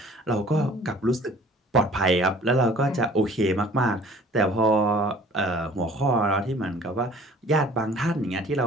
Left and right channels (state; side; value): normal; both; correlation 0.49